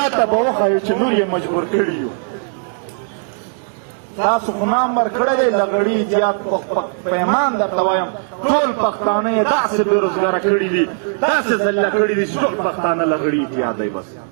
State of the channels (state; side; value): silent; left; digital silence